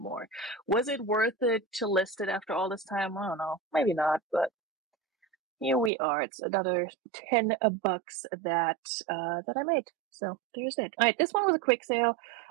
Was it worth it to list it after all this time? I don't know. Maybe not, but here we are. It's another $10 that I made. So there's it. All right, this one was a quick sale.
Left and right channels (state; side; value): drops out; left; at 5.9 s